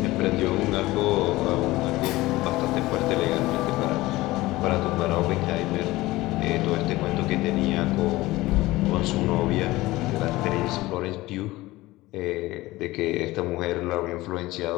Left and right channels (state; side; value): quieter; right; 18.8 dB